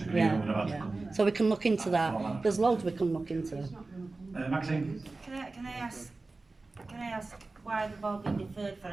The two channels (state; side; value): quieter; left; 3.5 dB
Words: agreement Yeah. would have had to Yeah. come. So we can look into that. There's loads we can look into. Maxine? Can I ask why they've all been deferred for